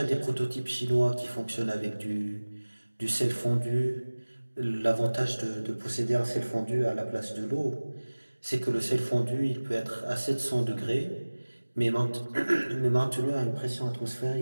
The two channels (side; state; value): both; inverted; correlation -1.00